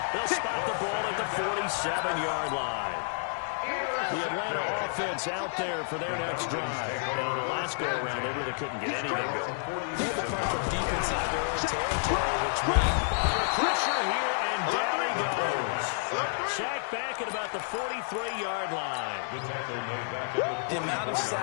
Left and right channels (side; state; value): right; silent; digital silence